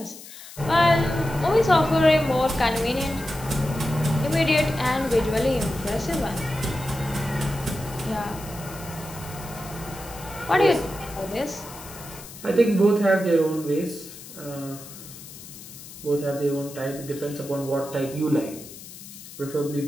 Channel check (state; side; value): noise; left; hiss, 15 dB below the sound